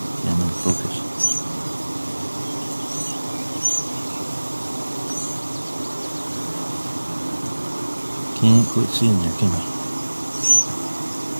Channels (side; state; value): both; inverted; correlation -1.00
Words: Yeah, I'm in focus. Can't quite see in there, can I?